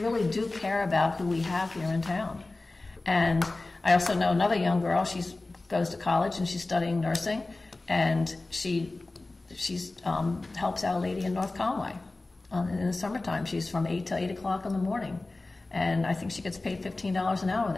do care about who we have here in town. And I also know another young girl. She goes to college and she's studying nursing, and she helps out a lady in North Conway in the summertime. She's from 8 to 8 o'clock in the morning. And I think she gets paid $15 an hour.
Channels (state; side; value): quieter; right; 3.1 dB